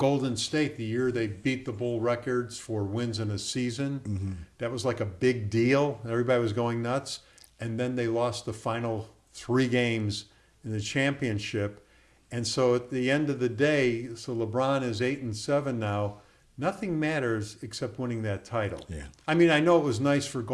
State, the year they beat the Bull records for wins in a season, that was like a big deal. Everybody was going nuts, and then they lost the final 3 games in the championship. And so at the end of the day, so LeBron is 8-7 now. Nothing matters except winning that title. Yeah. I mean, I know it was nice for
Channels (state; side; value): identical; both; correlation 1.00